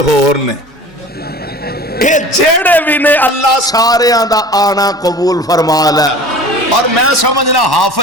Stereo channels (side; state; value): both; normal; correlation 0.41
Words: ہور نے، اے جیڑے بھی نے اللہ سارے دا آنا قبول فرما لے۔ اور میں سمجھنا